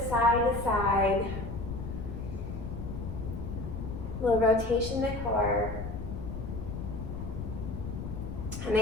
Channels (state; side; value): noise; left; rumble, 7 dB below the sound